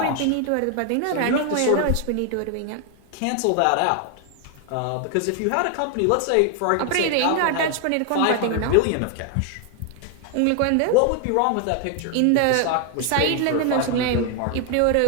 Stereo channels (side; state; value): both; different; correlation 0.00